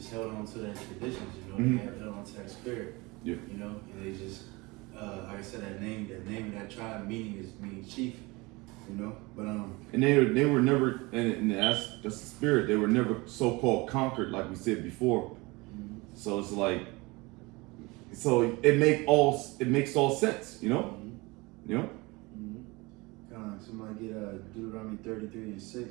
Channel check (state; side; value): quieter; left; 24.1 dB